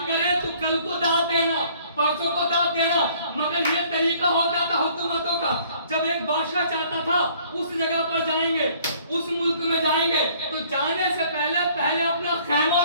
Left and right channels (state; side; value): inverted; both; correlation -0.57